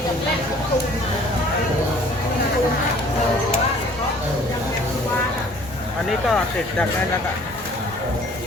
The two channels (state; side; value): normal; both; correlation 0.53